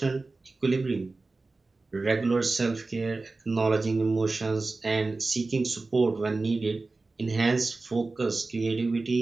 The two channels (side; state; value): left; quieter; 3.5 dB